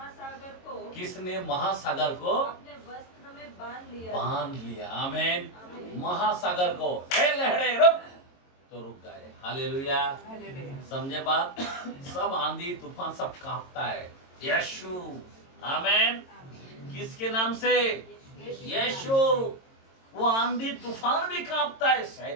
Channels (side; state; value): right; late; 22 ms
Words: किसने महासागर को अपने वस्त्र में बांध लिया? आमीन। महासागर को, हे लहरे रुक, तो रुक गए। हालेलुया। समझे बात? सब आंधी तूफान सब कांपता है यीशु। आमीन। किसके नाम से? यीशु। वो आंधी तूफान भी कांपता है।